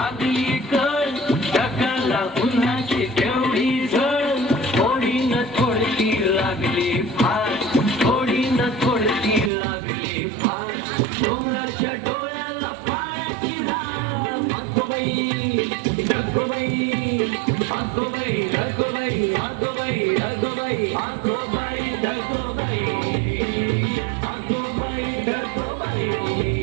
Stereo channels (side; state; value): left; drops out; at 9.5 s